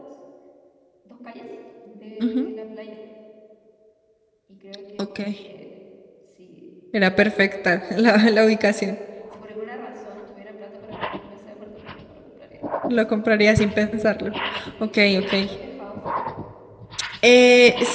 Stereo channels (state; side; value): identical; both; correlation 1.00